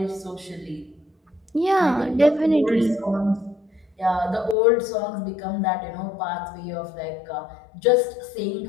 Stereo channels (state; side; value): drops out; right; at 4.5 s